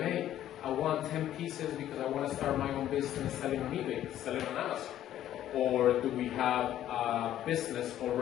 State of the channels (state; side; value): quieter; right; 12.0 dB